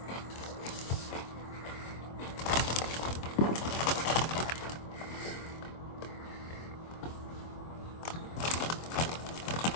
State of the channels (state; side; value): late; right; 24 ms